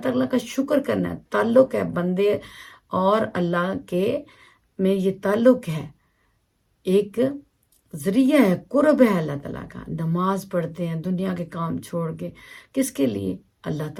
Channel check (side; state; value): both; identical; correlation 1.00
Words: تعالیٰ کا شکر کرنا ہے، تعلق ہے بندے اور اللہ کے میں، یہ تعلق ہے، ایک ذریعہ ہے، قرب ہے اللہ تعالیٰ کا. نماز پڑھتے ہیں دنیا کے کام چھوڑ کے، کس کے لیے؟ اللہ